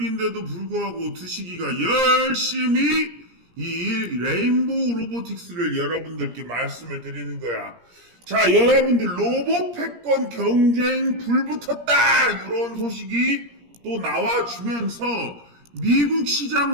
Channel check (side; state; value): left; late; 17 ms